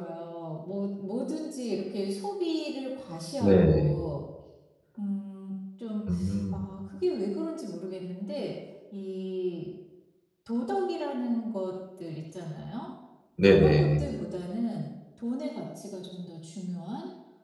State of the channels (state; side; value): identical; both; correlation 1.00